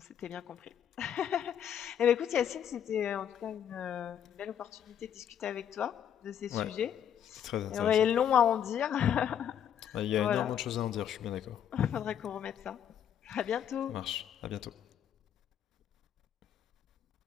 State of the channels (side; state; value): right; quieter; 9.3 dB